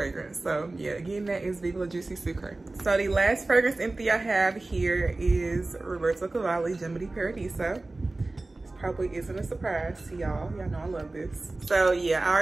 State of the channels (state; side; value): quieter; left; 3.1 dB